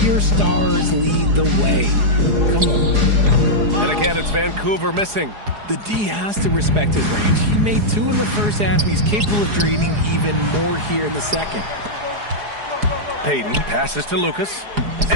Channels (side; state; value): left; late; 4.8 ms